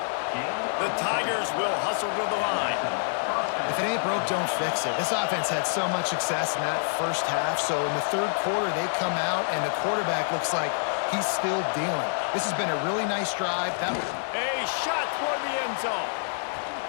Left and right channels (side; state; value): right; silent; digital silence